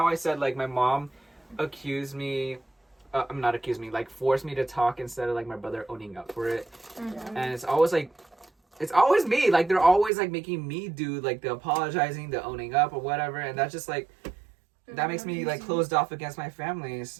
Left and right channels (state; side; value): drops out; left; at 10.1 s